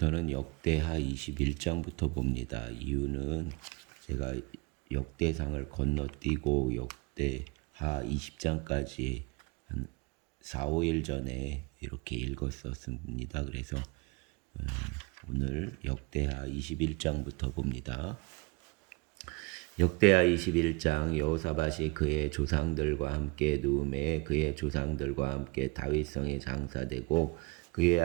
역대하 21장부터 봅니다. 이유는 제가 역대상을 건너뛰고 역대하 20장까지 한 4, 5일 전에 이렇게 읽었었습니다. 그래서 오늘 역대하 21장부터 봅니다. 역대하 21장. 여호사밧이 그의 조상들과 함께 누움에 그의 조상들과 함께 다윗성에 장사되고 그의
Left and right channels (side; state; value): left; quieter; 27.7 dB